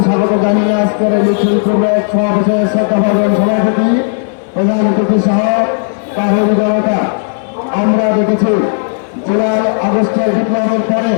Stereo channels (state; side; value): silent; right; digital silence